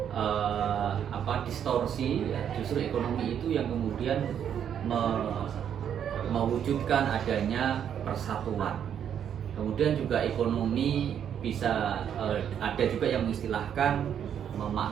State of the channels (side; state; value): left; quieter; 8.9 dB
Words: distorsi, justru ekonomi itu yang kemudian mewujudkan adanya persatuan. Kemudian juga ekonomi bisa ada juga yang mengistilahkan